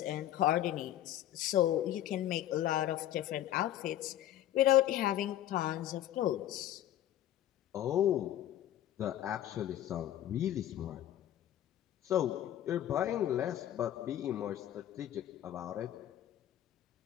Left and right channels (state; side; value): quieter; right; 12.4 dB